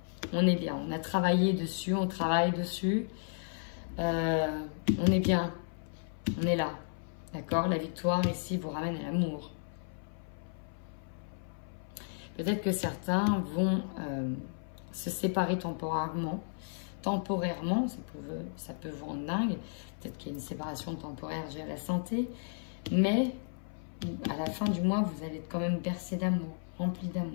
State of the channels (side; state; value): right; silent; 55 dB below the other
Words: On est bien, on a travaillé dessus, on travaille dessus. On est bien, on est là. D'accord? La victoire ici vous ramène à l'amour. Peut-être que certains vont se séparer temporairement temporairement, ça peut vous rendre dingue. Peut-être qu'il y a une séparation temporaire due à la santé. Mais à la fin du mois, vous allez être quand même bercé d'amour, rempli